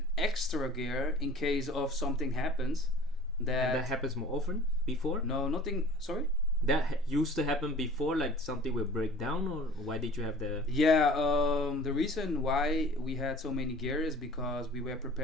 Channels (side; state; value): both; normal; correlation 0.46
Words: extra gear in case of something happens. And that happens more often before. No, nothing. Sorry. That used to happen before, like something will break down, or why did you have the? Yeah. The reason why we had so many gear is because we were